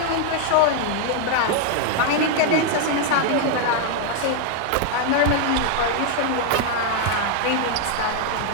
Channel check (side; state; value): both; different; correlation 0.00